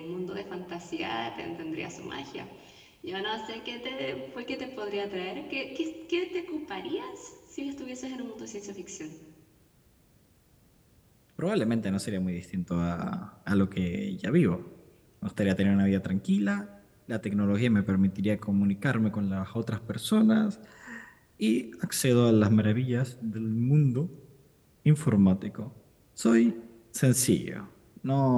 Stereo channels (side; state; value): both; identical; correlation 1.00